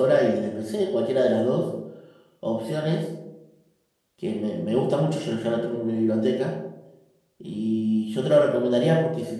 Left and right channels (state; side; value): identical; both; correlation 1.00